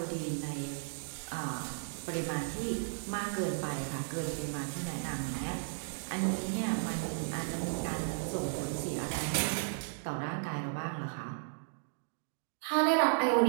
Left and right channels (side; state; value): left; silent; digital silence